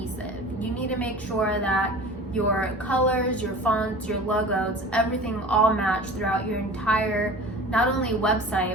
You need to make sure that your colors, your fonts, your logos, everything all match throughout your entire, not only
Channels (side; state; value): both; normal; correlation 0.39